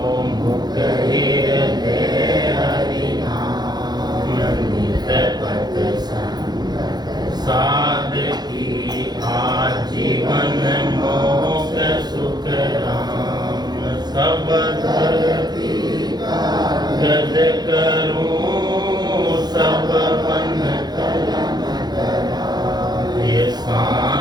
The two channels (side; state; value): left; late; 0.20 ms